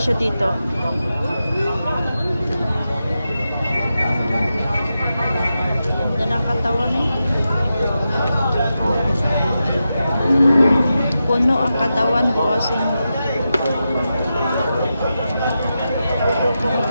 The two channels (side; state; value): both; inverted; correlation -0.89